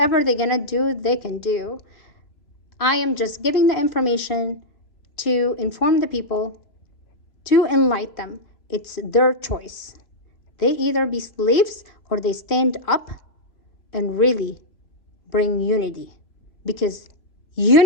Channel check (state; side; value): late; right; 3.0 ms